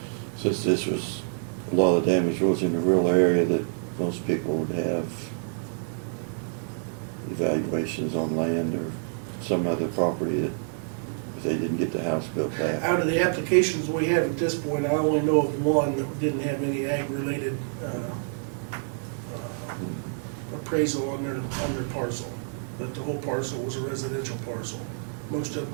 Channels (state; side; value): silent; left; digital silence